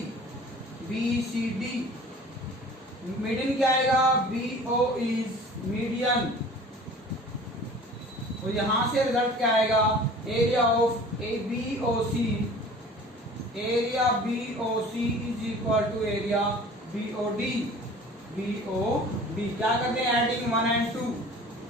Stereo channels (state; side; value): normal; both; correlation 0.45